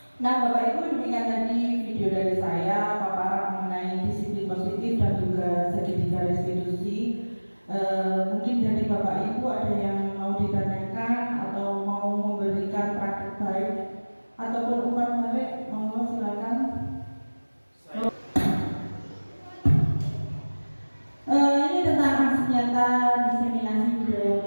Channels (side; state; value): both; inverted; correlation -1.00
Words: Nah, Bapak Ibu, demikian tadi video dari saya paparan mengenai disiplin positif dan juga segitiga restitusi. Mungkin dari Bapak Ibu ada yang mau ditanyakan atau mau memberikan praktek baik ataupun umpan balik, monggo silakan. Ini tentang aksi nyata diseminasi budaya